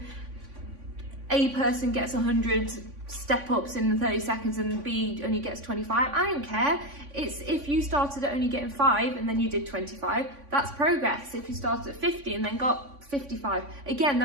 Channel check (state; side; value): late; left; 3.5 ms